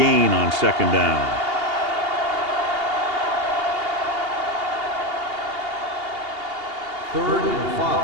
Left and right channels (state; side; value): late; left; 2.8 ms